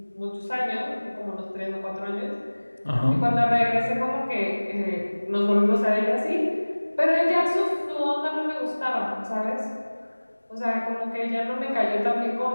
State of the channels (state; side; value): inverted; both; correlation -1.00